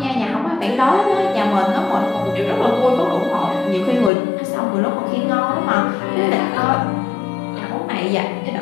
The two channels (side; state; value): right; drops out; at 4.1 s